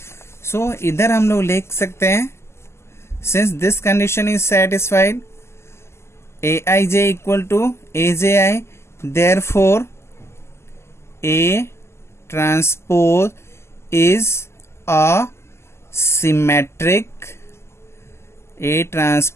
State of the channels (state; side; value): late; right; 0.13 ms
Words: So इधर हम लोग लिख सकते हैं, since this condition is satisfied, Aij equal to Aj, therefore A transpose is a symmetric, A